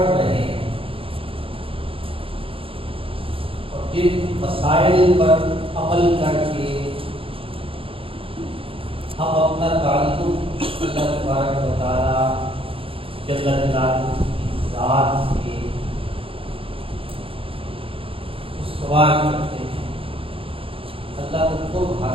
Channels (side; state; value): left; late; 0.27 ms